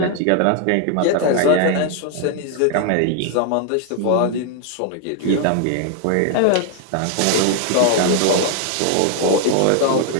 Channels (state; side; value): different; both; correlation 0.00